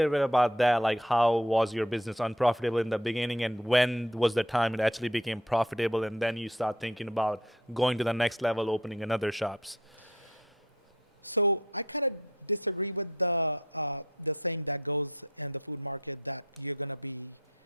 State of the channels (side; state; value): both; normal; correlation 0.57